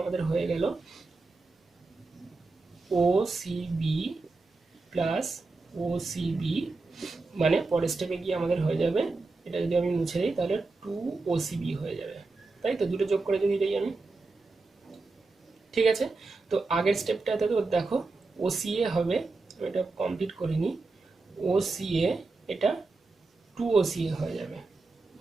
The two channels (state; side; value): quieter; left; 3.6 dB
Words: আমাদের হয়ে গেল ওসিবি প্লাস ওসিবি, মানে পরের স্টেপে গিয়ে আমাদের হয়ে যাবে, এটা যদি আমি মুছে দিই তাহলে 2 ওসিবি হয়ে যাবে, তাই তো দুটো যোগ করে যদি দিই আমি। ঠিক আছে, তো আগের স্টেপটাতে তো দেখো ওসিএ হবে, আমি এটা কমপ্লিট করিনি, ওসিএ এটা 2 ওসিএ হয়ে যাবে,